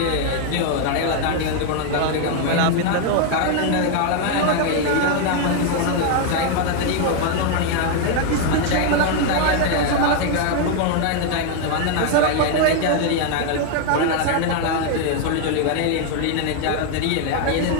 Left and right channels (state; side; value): different; both; correlation 0.00